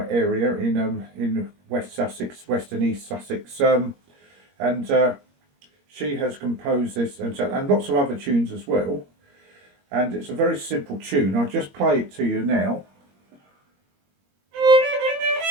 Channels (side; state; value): left; late; 21 ms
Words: area in West Sussex, West and East Sussex, and she has composed this and lots of other tunes as well. And it's a very simple tune. I'll just play it to you now.